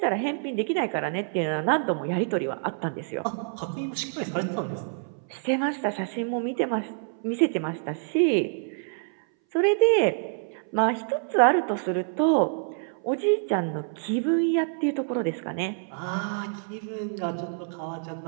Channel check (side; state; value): left; silent; 59 dB below the other